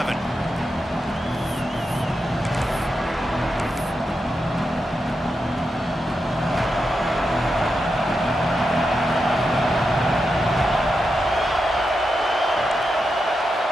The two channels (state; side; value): normal; both; correlation 0.87